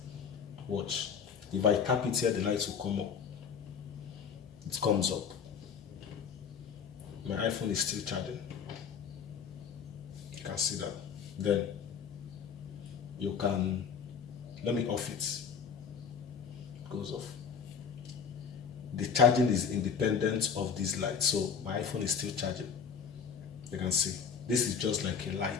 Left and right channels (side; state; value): right; quieter; 6.6 dB